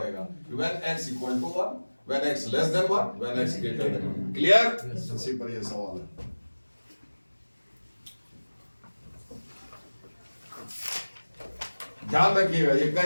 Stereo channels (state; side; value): inverted; both; correlation -1.00